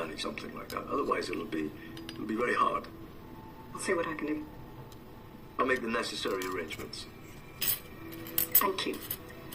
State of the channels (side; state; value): both; identical; correlation 1.00